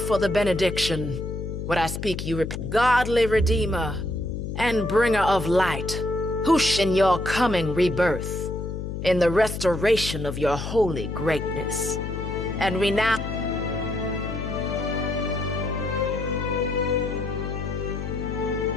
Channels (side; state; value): left; noise; hum, 5 dB below the sound